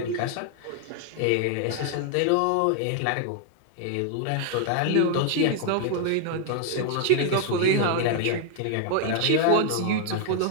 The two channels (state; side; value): different; both; correlation 0.00